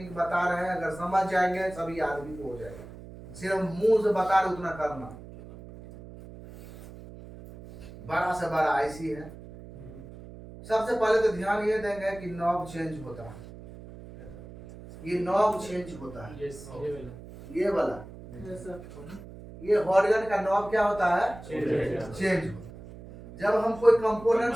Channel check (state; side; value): noise; right; hum, 16 dB below the sound